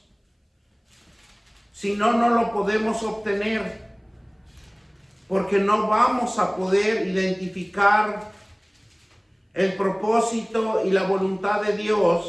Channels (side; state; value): both; identical; correlation 1.00